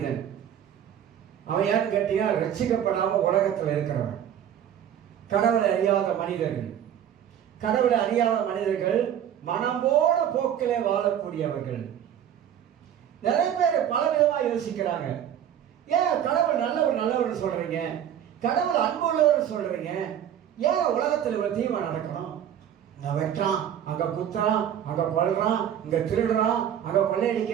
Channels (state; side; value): quieter; left; 9.8 dB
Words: அவன் யாருன்னு கேட்டீங்கன்னா ரட்சிக்கப்படாம உலகத்தில் இருக்கிறவன். கடவுளை அறியாத மனிதர்கள். கடவுளை அறியாத மனிதர்கள் மனம்போட போக்கிலே வாழக்கூடியவர்கள். நிறைய பேர் பல விதமா யோசிக்கிறாங்க. ஏன் கடவுள் நல்லவர் சொல்றீங்க, கடவுள் அன்புள்ளவர் சொல்றீங்க, ஏன் உலகத்தில் இவ்வளவு தீமை நடக்கணும்? இங்க வெட்டான், அங்க குத்துறான், அங்க கொல்றான், இங்க திருடுறான், அங்க